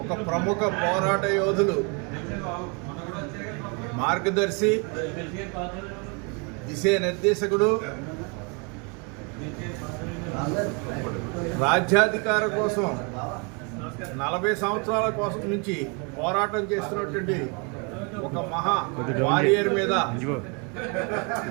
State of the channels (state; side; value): quieter; left; 33.5 dB